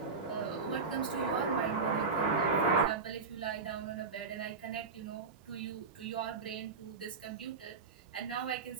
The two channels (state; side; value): quieter; left; 4.7 dB